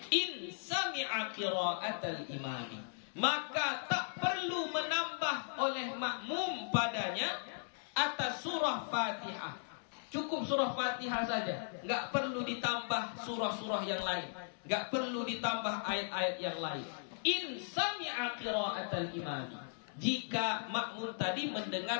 in sami'a qira'atal imami. Maka tak perlu menambah oleh makmum padanya atas surah Fatihah. Cukup surah Fatihah saja, nggak perlu ditambah surah-surah yang lain, nggak perlu ditambah ayat-ayat yang lain. In sami'a qira'atal imami, jika makmum tadi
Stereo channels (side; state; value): right; silent; digital silence